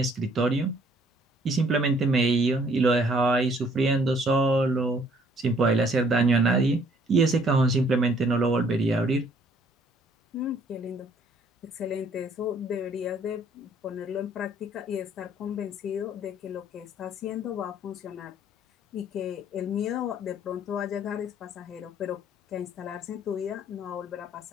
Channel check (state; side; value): normal; both; correlation 0.61